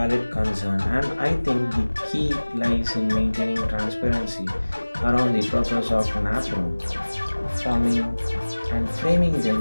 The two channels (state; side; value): inverted; both; correlation -1.00